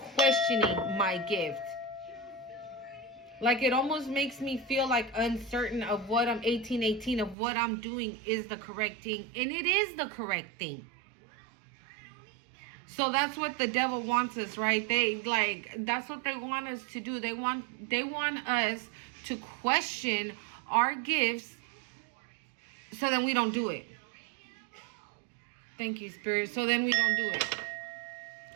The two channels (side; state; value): left; drops out; at 7.4 s